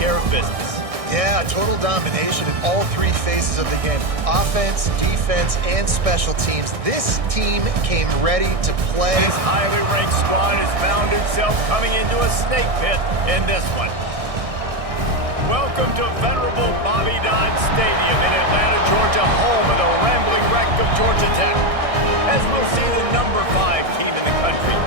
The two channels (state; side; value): late; left; 1.6 ms